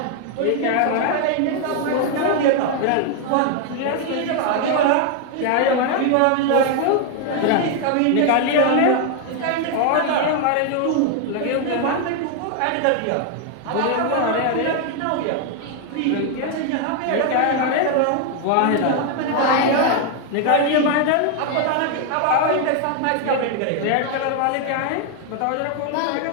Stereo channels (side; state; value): both; different; correlation 0.01